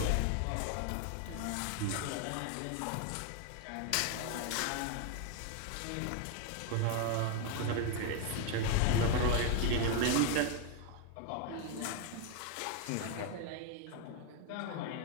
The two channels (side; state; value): both; different; correlation 0.01